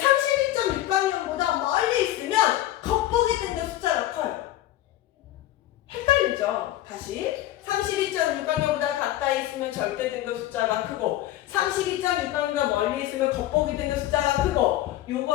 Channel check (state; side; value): quieter; right; 14.3 dB